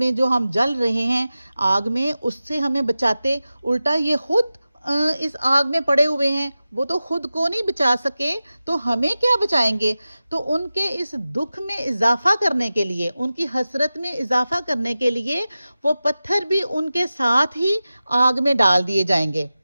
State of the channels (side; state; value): both; inverted; correlation -0.95